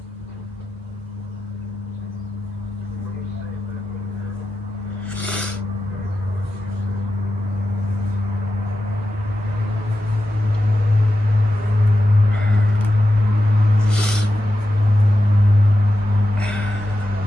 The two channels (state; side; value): normal; both; correlation 0.91